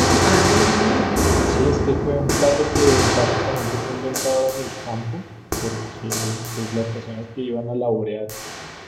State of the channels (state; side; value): identical; both; correlation 1.00